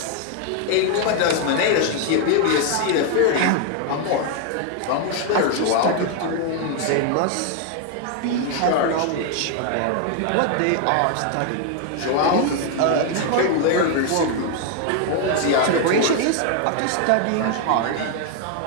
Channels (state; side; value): different; both; correlation 0.00